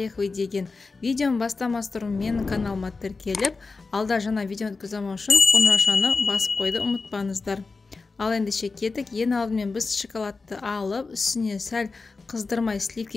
деген видеоны бастамастан менің каналыма тіркеліп, алда жаңа видео өткіземін үшін қоңыраушаны басып қойды, ұмытпаңыздар. Ал ендеше кеттік. Ең алдымен біз шоколадты алып, үстіне сәл қыздырмай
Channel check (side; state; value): right; quieter; 4.1 dB